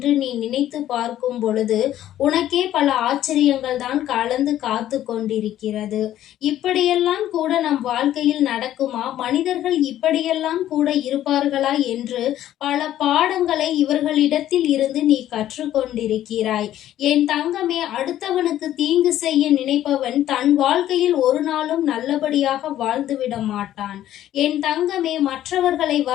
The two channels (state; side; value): quieter; right; 12.5 dB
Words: நீ நினைத்து பார்க்கும் பொழுது உனக்கே பல ஆச்சரியங்கள் தான் கலந்து காத்து கொண்டிருக்கிறது. இப்படியெல்லாம் கூட நம் வாழ்க்கையில் நடக்குமா? மனிதர்கள் இப்படியெல்லாம் கூட இருப்பார்களா என்று பல பாடங்களை இவர்களிடத்தில் இருந்து நீ கற்றுக்கொண்டிருக்கிறாய். என் தங்கமே, அடுத்தவனுக்கு தீங்கு செய்ய நினைப்பவன் தன் வாழ்க்கையில் ஒரு நாளும் நல்லபடியாக வாழ்ந்துவிட மாட்டான். என் தங்கமே, மற்றவர்களை